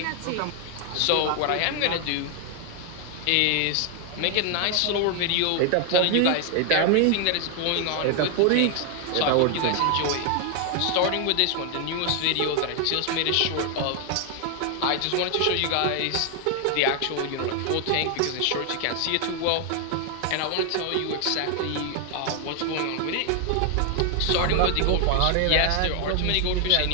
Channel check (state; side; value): different; both; correlation 0.00